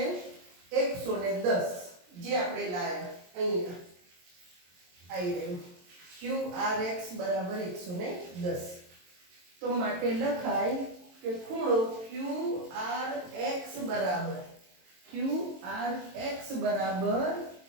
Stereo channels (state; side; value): late; left; 22 ms